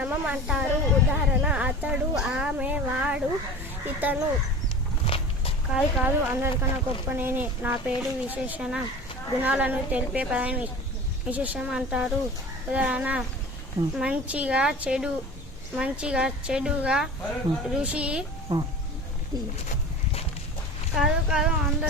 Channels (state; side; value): normal; both; correlation 0.37